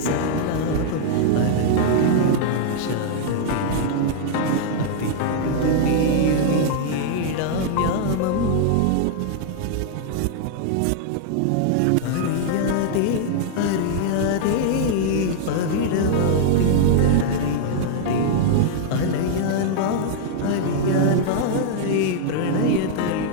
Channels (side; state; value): both; different; correlation -0.01